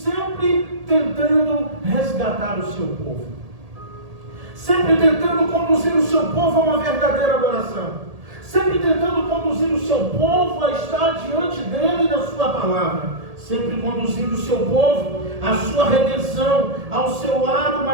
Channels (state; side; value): late; left; 1.8 ms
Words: tentando resgatar o seu povo. sempre tentando conduzir o seu povo a uma verdadeira adoração, sempre tentando conduzir o seu povo a estar diante dele e da sua palavra, sempre conduzindo o seu povo à sua redenção, ao seu lado